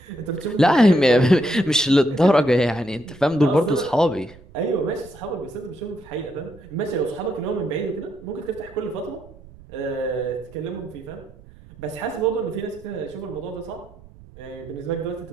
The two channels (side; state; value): right; noise; rumble, 22 dB below the sound